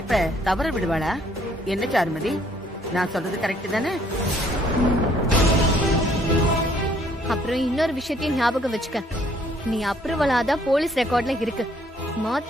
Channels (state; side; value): normal; both; correlation 0.64